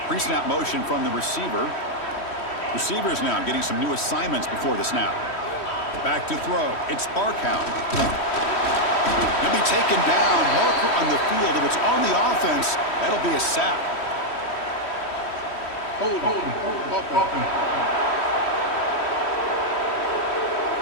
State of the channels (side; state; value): right; late; 3.1 ms